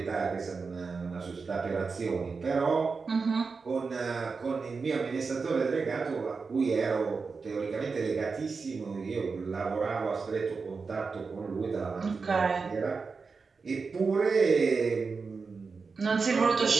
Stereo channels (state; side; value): quieter; left; 4.7 dB